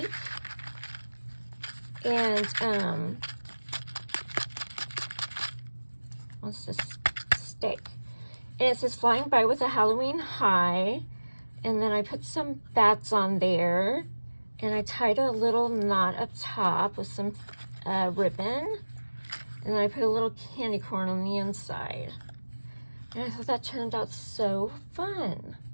And what's this stick? And it says flying by with a Halloween high. And then I put some bats on there. And I tied a little knot up top with some ribbon. And then I put a little candy corn on the inside. And I thought that turned out so fun.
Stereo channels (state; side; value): inverted; both; correlation -1.00